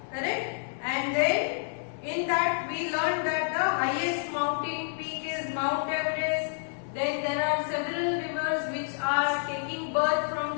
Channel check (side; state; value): right; silent; digital silence